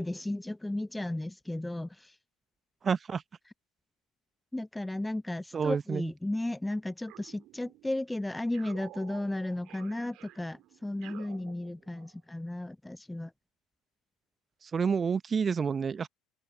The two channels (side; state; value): both; normal; correlation 0.92